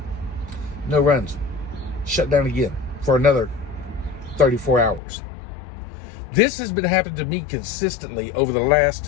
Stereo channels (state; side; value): drops out; right; at 5.0 s